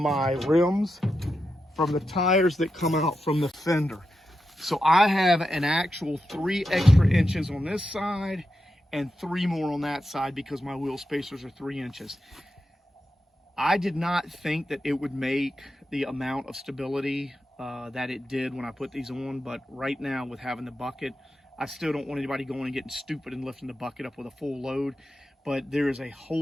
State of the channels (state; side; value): normal; both; correlation 0.88